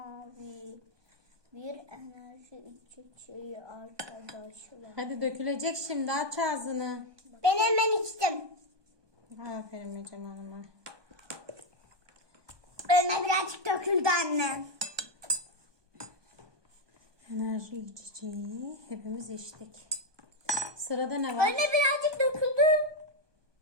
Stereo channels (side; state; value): left; late; 1.2 ms